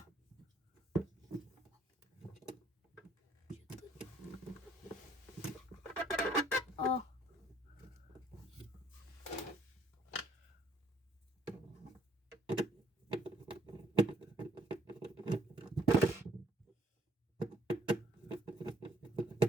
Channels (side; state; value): both; normal; correlation 0.65